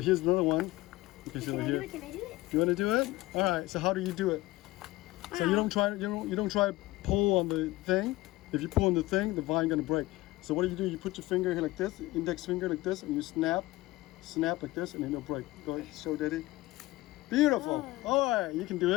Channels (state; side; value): quieter; right; 18.9 dB